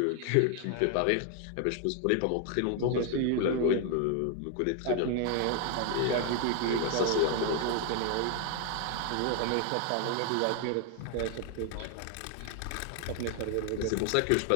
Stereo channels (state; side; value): different; both; correlation 0.00